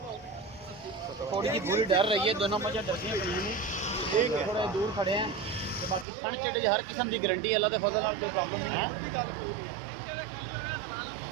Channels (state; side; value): drops out; left; at 6.1 s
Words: थोड़ी जी बुरी डर रही है दोनों मजा डरदियां पईयां ने ठीक है थोड़ा दूर खड़े हैं तो बाकी ठंड चढ़े हर किस्म की गारंटी अल्लाह के फजल नाल कोई प्रॉब्लम नहीं है